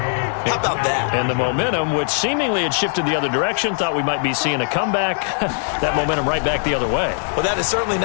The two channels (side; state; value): right; silent; digital silence